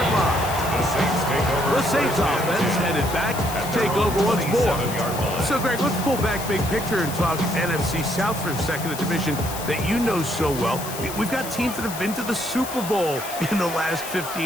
line. The Saints offense headed back to take over once more. So, Greg, let's pull back big picture and talk NFC South for a second, a division that you know so well. We've got teams that have been to the Super Bowl in the last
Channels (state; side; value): noise; left; hiss, 10 dB below the sound